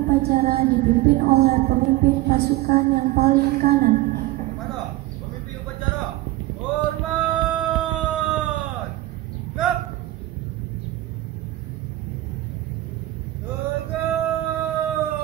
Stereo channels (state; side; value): quieter; left; 17.2 dB